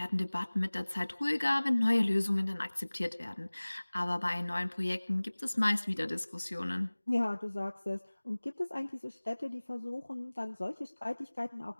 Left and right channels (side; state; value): both; inverted; correlation -1.00